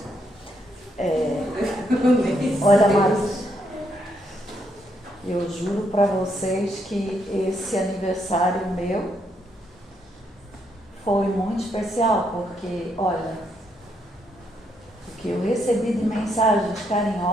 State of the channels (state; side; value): normal; both; correlation 0.76